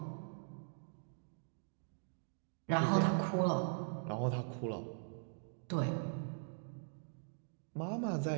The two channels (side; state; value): left; silent; digital silence